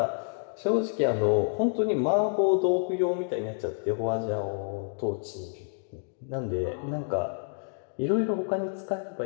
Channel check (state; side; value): silent; right; digital silence